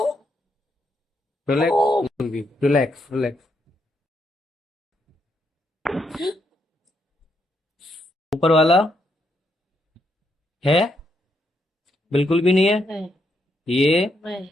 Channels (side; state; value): both; normal; correlation 0.77